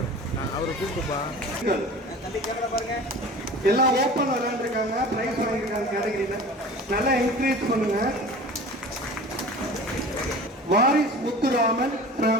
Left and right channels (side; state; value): both; normal; correlation 0.39